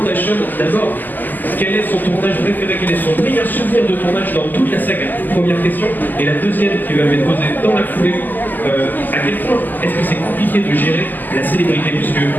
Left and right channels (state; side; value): late; right; 0.086 ms